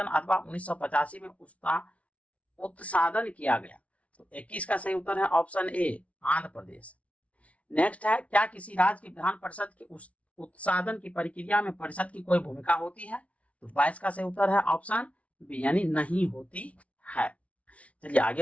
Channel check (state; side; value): late; right; 0.065 ms